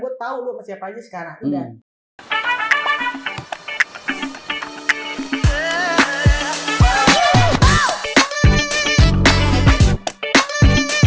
tahu lu sama siapa aja sekarang. Udah.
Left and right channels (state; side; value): identical; both; correlation 1.00